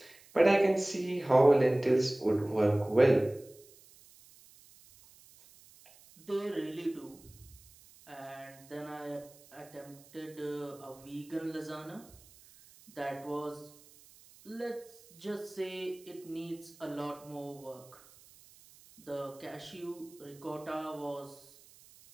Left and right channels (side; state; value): right; noise; hiss, 24 dB below the sound